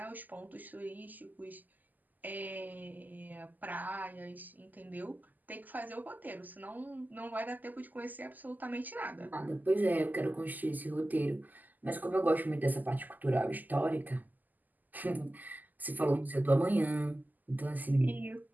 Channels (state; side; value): late; left; 0.084 ms